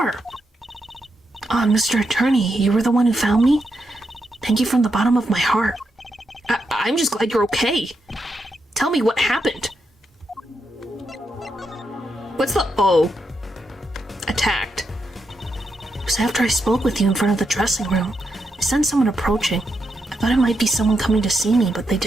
Mr. Attorney, you were the one who found me? Thank you from the bottom of my heart. I'm just glad you're okay. Tell me what happened. What's the O? Attacked. It was after I spoke with you in front of the dressing room. I sensed someone approaching. I thought it might be someone coming to see me, but they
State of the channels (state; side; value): normal; both; correlation 0.83